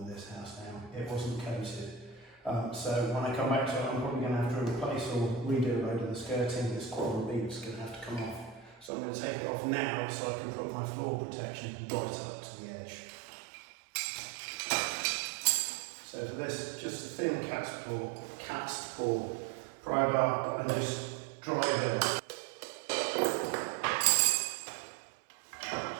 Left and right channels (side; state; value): left; drops out; at 8.9 s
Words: in this house now, it wasn't coated. So when I come back to it, I'm probably going to have to replace or redo a load of the skirting. This quadrant bead is going to have to come off. So I'm going to take it off now so I can put my floor protection right up to the edge. So for this, just a thin cast ball pry bar and just dry it off.